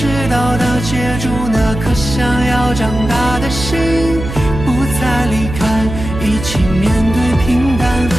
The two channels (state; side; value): noise; right; hum, 7 dB below the sound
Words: 到达接住那颗想要长大的心，不再离开，一起面对平淡和